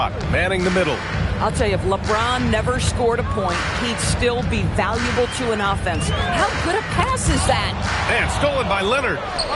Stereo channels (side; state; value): both; identical; correlation 1.00